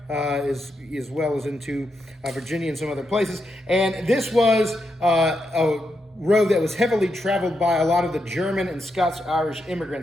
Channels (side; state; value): both; normal; correlation 0.83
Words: as well as into Virginia and some other places. And this was a road that was heavily traveled by a lot of the German and Scots-Irish